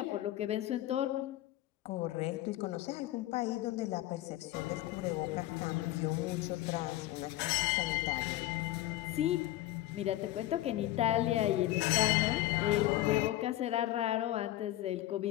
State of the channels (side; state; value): right; quieter; 15.2 dB